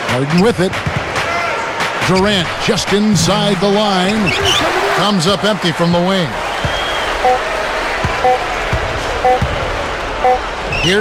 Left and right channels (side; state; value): both; identical; correlation 1.00